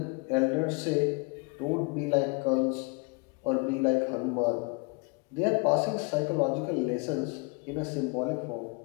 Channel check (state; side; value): quieter; right; 31.2 dB